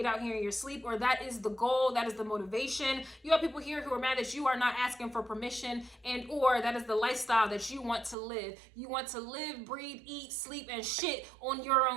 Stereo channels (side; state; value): left; drops out; at 8.2 s